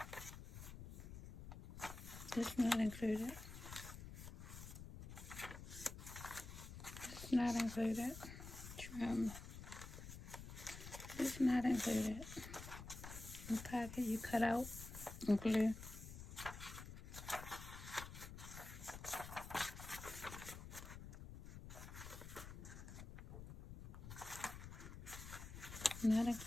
This not included. This not included. Trim. This not included. The pocket you cut out and glue. Not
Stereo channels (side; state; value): left; noise; rumble, 10 dB below the sound